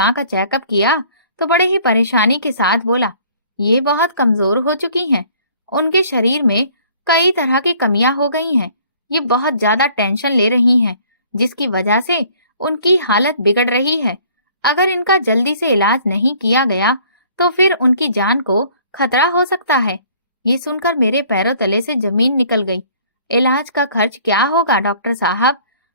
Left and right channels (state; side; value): inverted; both; correlation -0.56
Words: का चेकअप किया तो बड़े ही परेशानी के साथ बोला, ये बहुत कमजोर हो चुकी हैं। उनके शरीर में कई तरह की कमियां हो गई हैं। ये बहुत ज्यादा टेंशन ले रही हैं, जिसकी वजह से उनकी हालत बिगड़ रही है। अगर इनका जल्दी से इलाज नहीं किया गया तो फिर उनकी जान को खतरा हो सकता है। ये सुनकर मेरे पैरों तले से जमीन निकल गई। इलाज का खर्च क्या होगा डॉक्टर साहब?